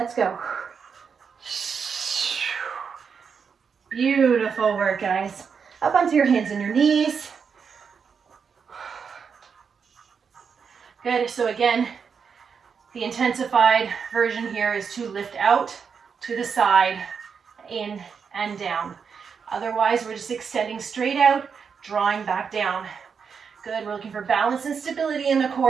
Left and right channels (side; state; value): left; quieter; 6.2 dB